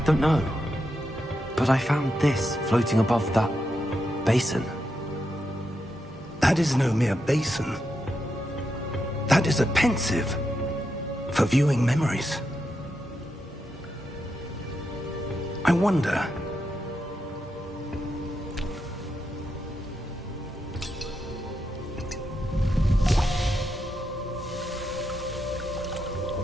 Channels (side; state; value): both; normal; correlation 0.84